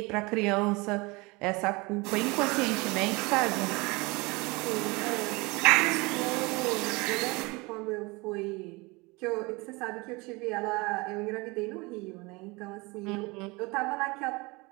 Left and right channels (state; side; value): quieter; left; 25.3 dB